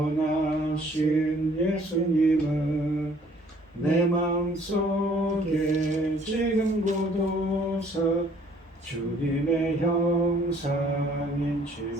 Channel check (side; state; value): both; normal; correlation 0.59